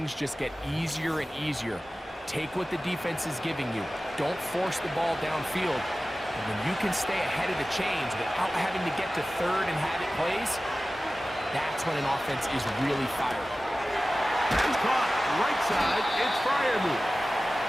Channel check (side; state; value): both; normal; correlation 0.96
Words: just get easier and easier. Take what the defense is giving you. Don't force the ball downfield. And when you can stay ahead of the chains without having to get to third and have it plays, that's when an offense is really fired. And caught right side, it's Freiermuth.